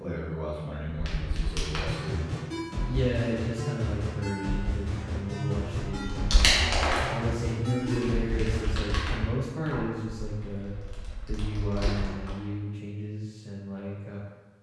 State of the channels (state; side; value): identical; both; correlation 1.00